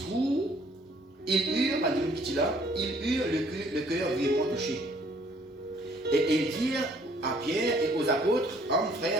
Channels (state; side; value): normal; both; correlation 0.61